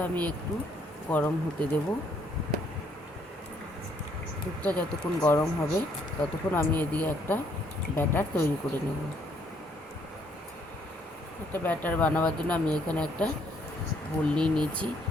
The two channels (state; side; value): normal; both; correlation 0.68